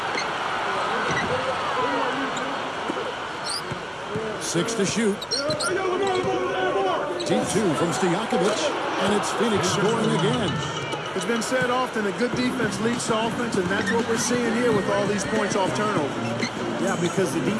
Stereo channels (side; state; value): both; identical; correlation 1.00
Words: Six to shoot. Deep 2 from Stojakovic, and it's Phoenix scoring again. It's been said often that good defense leads to offense, and that's what we're seeing here with all these points off turnovers. Yeah, because the